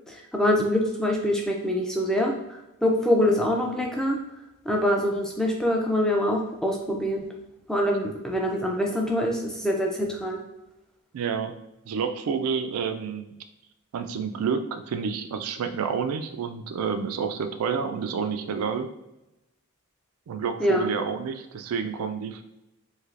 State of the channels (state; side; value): normal; both; correlation 0.42